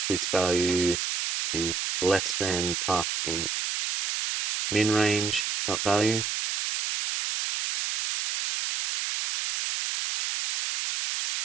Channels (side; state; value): right; noise; hiss, 2 dB below the sound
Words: this value is less than pass int min range dot value.